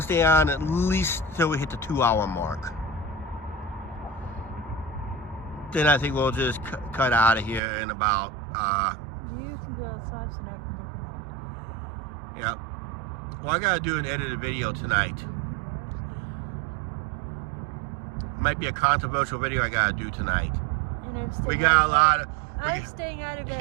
stay on at least till we hit the 2-hour mark. Then I think we'll just cut out of here in about, You can be outside so I can yeah. Well, I got to do an edited video tonight. Might be a controversial video I got to do tonight. look at it. And I'm staying, We got a lot of... I'm staying out of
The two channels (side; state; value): left; drops out; at 7.6 s